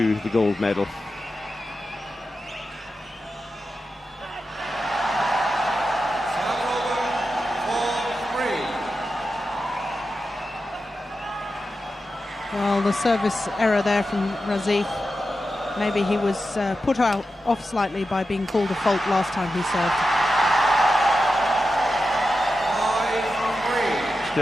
the gold medal. Well, the service error there from Razif. Maybe he was put off slightly by being called a fault last time he served.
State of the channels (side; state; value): both; normal; correlation 0.90